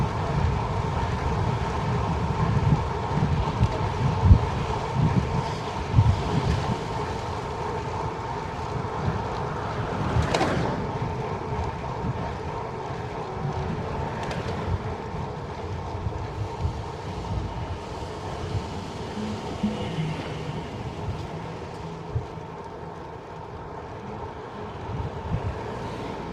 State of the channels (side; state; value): both; identical; correlation 1.00